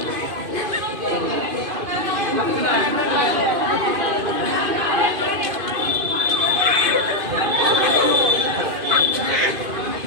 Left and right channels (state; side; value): late; left; 2.5 ms